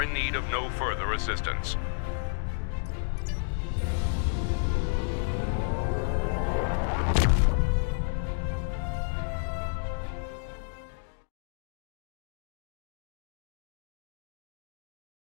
in need of no further assistance.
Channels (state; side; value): silent; right; 57 dB below the other